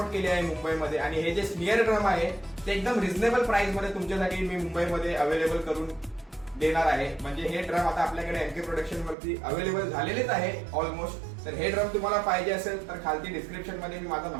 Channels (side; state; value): left; drops out; at 9.2 s